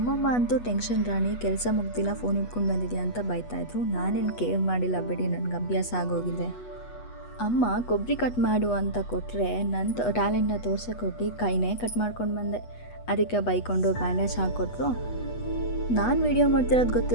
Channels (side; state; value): right; late; 8.2 ms